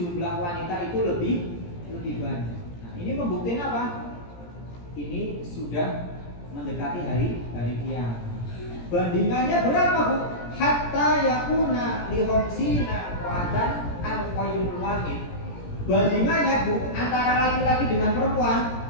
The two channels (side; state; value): right; late; 17 ms